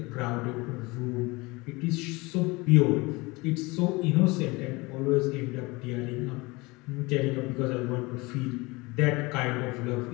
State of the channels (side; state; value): right; quieter; 24.0 dB